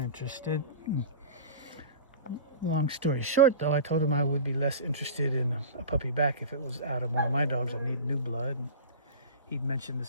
Long story short, though, I told him I would be less interested in a puppy back if it was out of one of my dogs. I need new blood. And he'd mentioned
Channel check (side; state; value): both; inverted; correlation -0.34